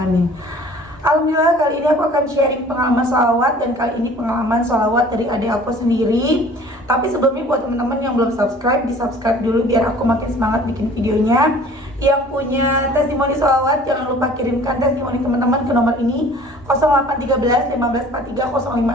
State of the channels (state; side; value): normal; both; correlation 0.49